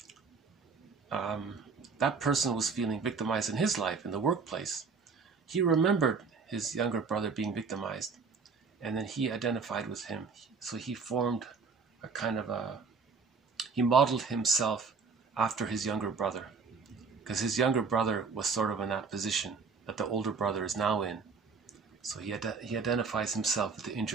that person was feeling victimized in his life, in the workplace. He remembered his younger brother being victimized, and then he identified with him. So he formed a kind of he modeled himself after his younger brother, because his younger brother was sort of in that position that the older brother is now in. So he identifies himself with the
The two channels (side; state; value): left; quieter; 5.0 dB